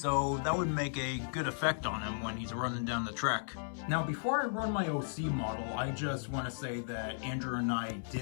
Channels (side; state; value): right; silent; 54 dB below the other